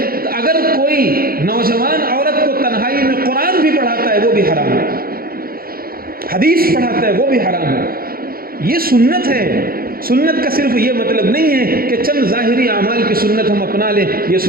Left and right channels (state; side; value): late; left; 0.43 ms